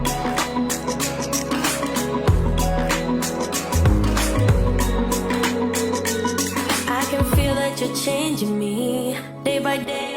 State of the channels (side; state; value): both; identical; correlation 1.00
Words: I can feel that you're changing me day by